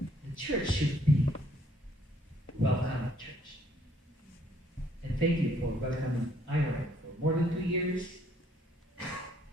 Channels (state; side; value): normal; both; correlation 0.65